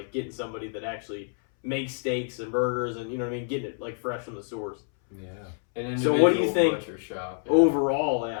getting somebody that actually makes steaks and burgers and you know what I mean, getting it like fresh from the source. Yeah. An So what do you individual think butcher shop. Yeah. Overall,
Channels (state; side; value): silent; right; 60 dB below the other